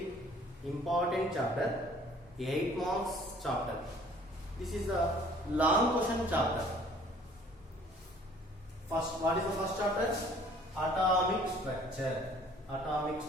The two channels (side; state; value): both; normal; correlation 0.55